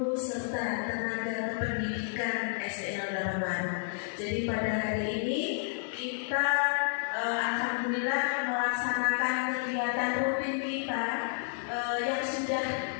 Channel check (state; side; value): silent; right; digital silence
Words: serta tenaga kependidikan SDN 08 Baru. Jadi pada hari ini kita alhamdulillah melaksanakan kegiatan rutin kita yang sudah